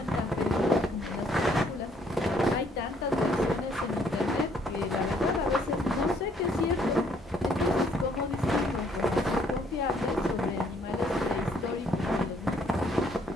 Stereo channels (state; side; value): normal; both; correlation 0.65